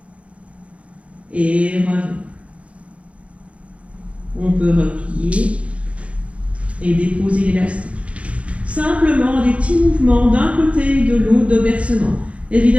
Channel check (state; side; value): late; left; 0.063 ms